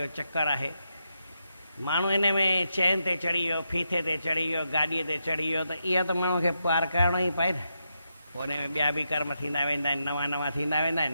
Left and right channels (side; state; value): both; inverted; correlation -0.84